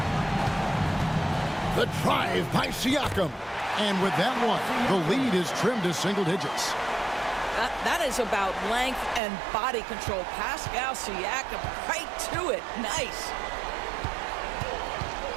The drive by Siakam. And with that one, the lead is trimmed to single digits. That is about length and body control. Pascal Siakam right to it. Nice.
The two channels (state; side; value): drops out; left; at 9.2 s